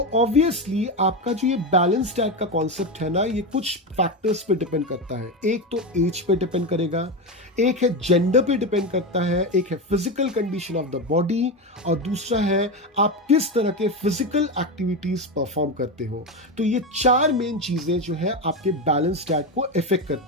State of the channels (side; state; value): both; normal; correlation 0.16